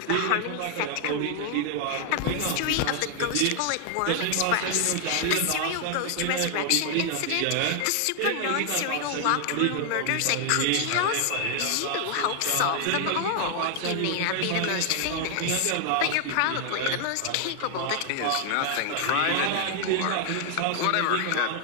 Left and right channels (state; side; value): different; both; correlation 0.00